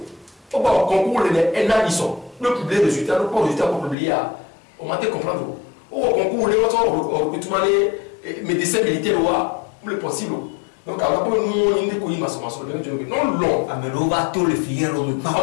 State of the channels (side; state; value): right; drops out; at 4.0 s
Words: au bas concours les NA ils sont le public de résultats le pas résultat pour publier au matin comprendre au concours les autres recrutement les médecins militaires le possible donc alors nous on est connu massivement non long amelo va tout le fier au